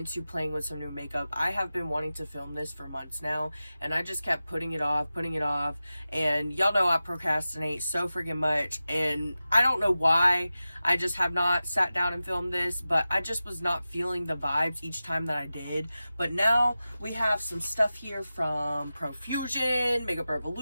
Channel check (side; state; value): both; inverted; correlation -0.94